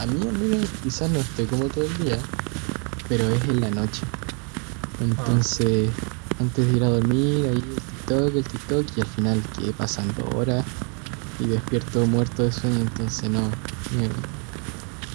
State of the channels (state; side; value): quieter; left; 38.0 dB